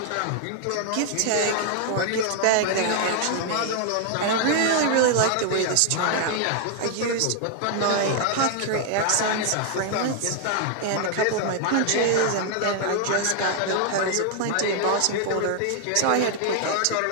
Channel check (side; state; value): both; different; correlation 0.00